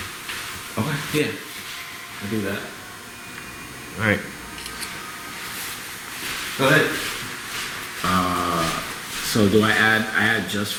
Okay. Yeah. I do that. Alright. Go ahead. So do I add just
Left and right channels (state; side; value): identical; both; correlation 1.00